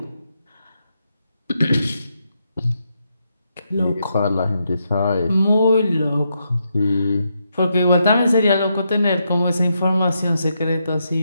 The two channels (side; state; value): both; inverted; correlation -0.81